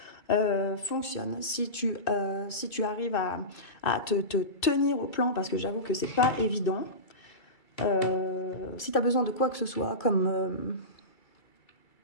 fonctionne, si tu arrives à te tenir au plan, parce que j'avoue que c'est pas évident. Si tu as besoin de quoi que ce soit, comme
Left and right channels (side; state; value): right; late; 2.3 ms